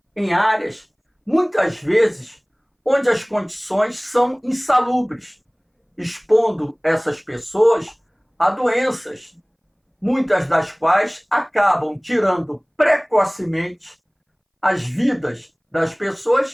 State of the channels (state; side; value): identical; both; correlation 1.00